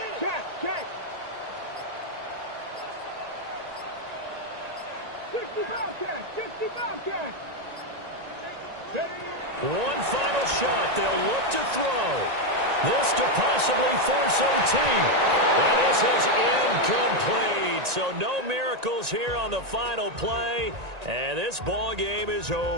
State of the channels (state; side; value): late; left; 1.9 ms